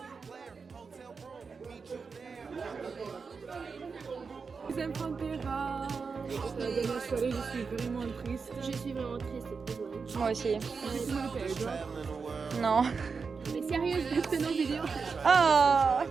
Deuxième Pantera. La dernière soirée, je suis vraiment triste. Je suis vraiment triste, désolée. moi aussi. Toi Non. Mais sérieux, je fais nos vidéos. Ah.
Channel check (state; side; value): quieter; left; 5.1 dB